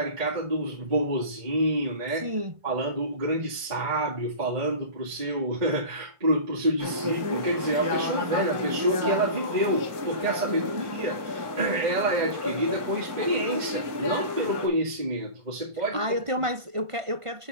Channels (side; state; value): left; late; 1.5 ms